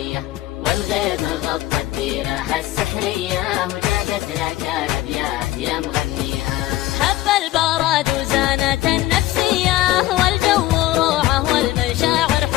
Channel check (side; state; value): right; quieter; 16.0 dB